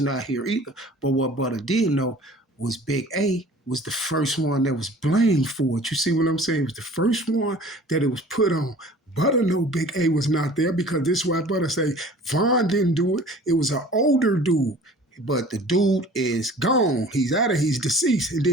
not here either. But what Butta did know was Big A was the first one that was blamed for it. You see what I'm saying? It was the first one that it was put on. Butta know Big A was not there because this is why Butta say Von didn't do it. It was an older dude. But the dude is gone. He's deceased. And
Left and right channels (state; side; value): normal; both; correlation 0.46